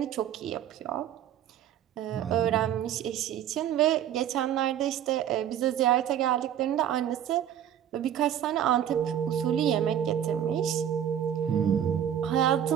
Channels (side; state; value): left; quieter; 10.2 dB